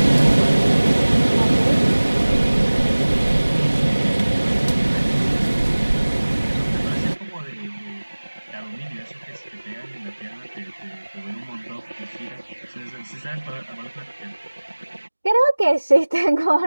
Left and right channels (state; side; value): inverted; both; correlation -1.00